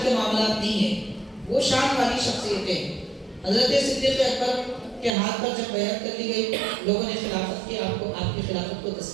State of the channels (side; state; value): left; drops out; at 5.1 s